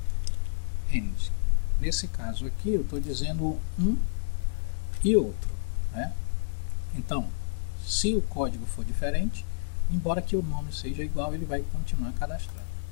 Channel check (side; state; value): right; silent; 58 dB below the other